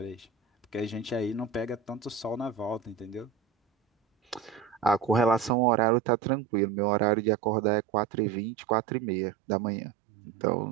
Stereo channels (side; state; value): left; drops out; at 5.5 s